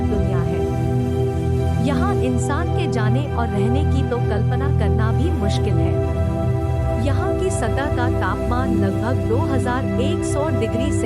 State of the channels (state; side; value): identical; both; correlation 1.00